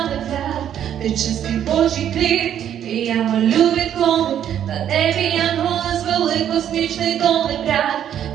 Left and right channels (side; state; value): left; quieter; 10.0 dB